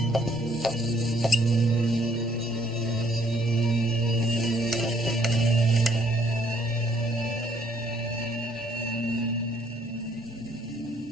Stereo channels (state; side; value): normal; both; correlation 0.66